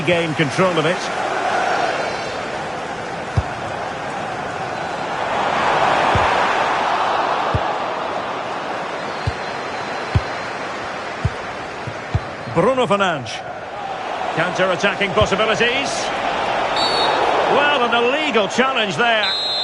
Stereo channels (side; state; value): both; identical; correlation 1.00